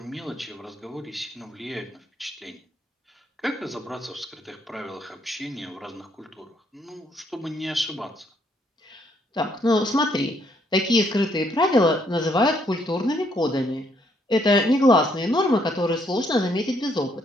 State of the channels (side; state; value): both; normal; correlation 0.70